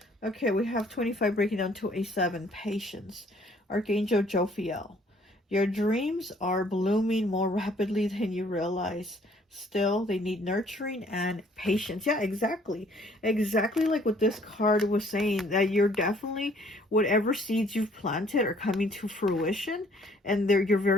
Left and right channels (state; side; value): normal; both; correlation 0.60